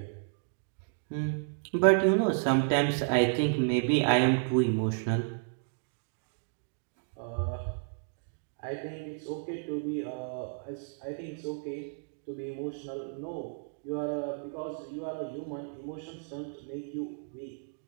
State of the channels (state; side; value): silent; left; digital silence